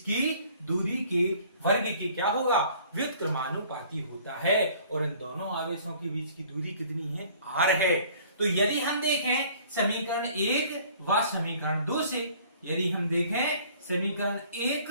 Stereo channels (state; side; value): inverted; both; correlation -0.53